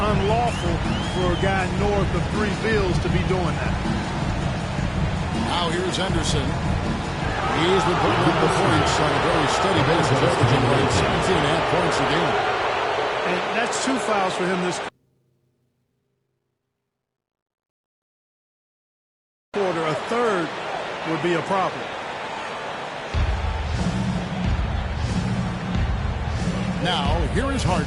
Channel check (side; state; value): both; identical; correlation 1.00